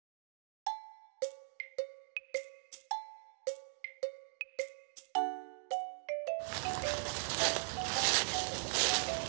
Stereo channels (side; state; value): left; silent; digital silence